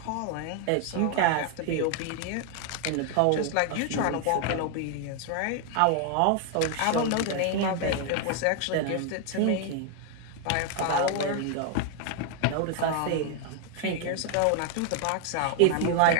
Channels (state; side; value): different; both; correlation 0.00